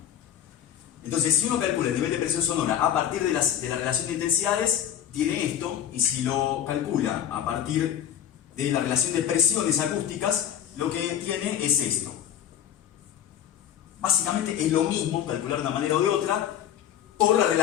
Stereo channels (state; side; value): quieter; right; 10.1 dB